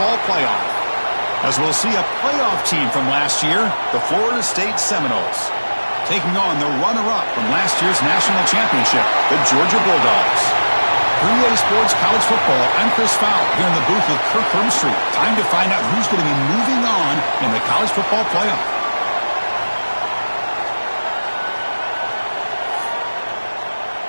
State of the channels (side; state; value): both; inverted; correlation -1.00